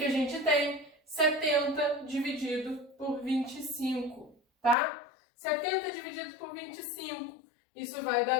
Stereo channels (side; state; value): right; drops out; at 4.8 s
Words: a gente tem? 70 dividido por 25, tá? 70 dividido por 25, isso vai